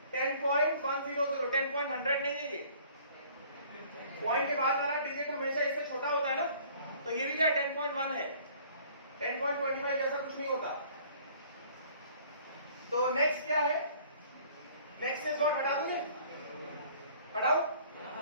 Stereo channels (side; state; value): both; inverted; correlation -0.54